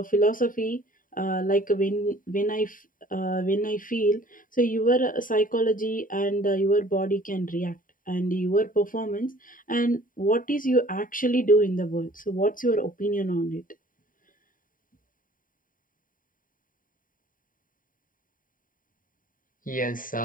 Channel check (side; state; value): right; late; 0.40 ms